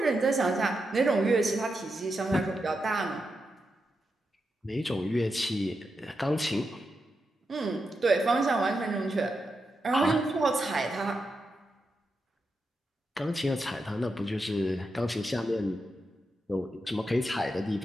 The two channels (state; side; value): normal; both; correlation 0.86